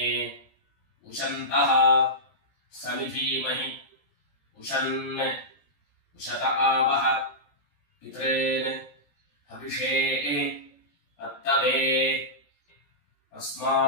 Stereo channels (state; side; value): late; right; 14 ms